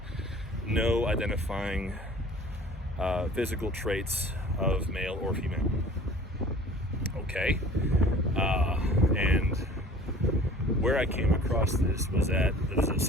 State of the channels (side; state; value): both; normal; correlation 0.47